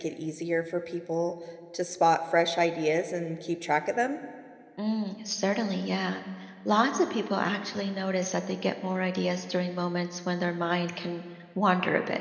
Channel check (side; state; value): both; identical; correlation 1.00